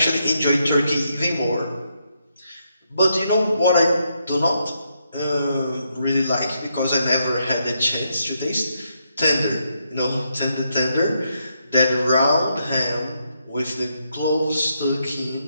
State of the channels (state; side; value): inverted; both; correlation -0.79